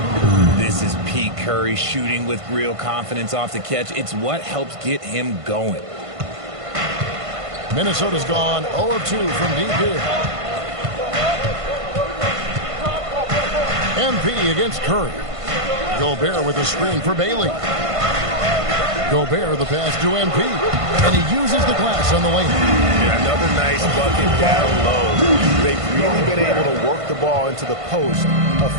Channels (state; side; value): late; left; 1.5 ms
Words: This is Pete Curry shooting with real confidence off the catch. It's what helps get him going. Minnesota's gone 0 of 2 from deep here. MP against Curry. Gobert with a screen for Bailey. Gobert the pass to MP. And he uses the glass on the way. Yeah, another nice bucket down low. They've really been able to work the ball into the post